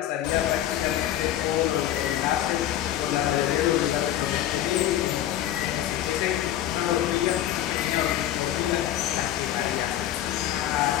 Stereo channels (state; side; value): quieter; right; 12.3 dB